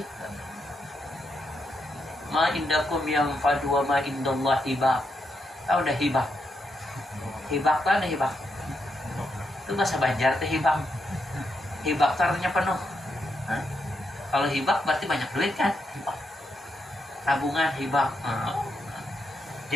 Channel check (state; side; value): normal; both; correlation 0.82